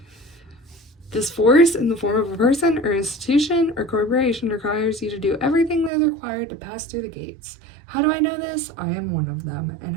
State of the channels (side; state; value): left; drops out; at 5.9 s